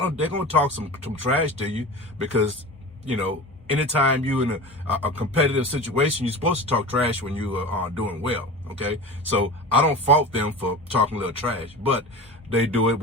talk some trash to you because, anytime you in a competitive situation, you're supposed to talk trash when you are doing well, okay? So I don't fault them for talking a little trash, but they do it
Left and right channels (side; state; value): both; normal; correlation 0.32